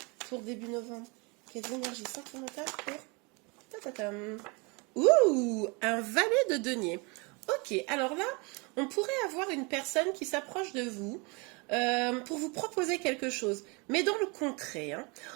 pour début novembre? Quelles énergies sentimentales pour... Ta-ta-tam. Ouh, un valet de denier. Ok, alors là, on pourrait avoir une personne qui s'approche de vous pour vous proposer quelque chose. Mais dans le concret, hein,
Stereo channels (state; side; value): quieter; left; 29.6 dB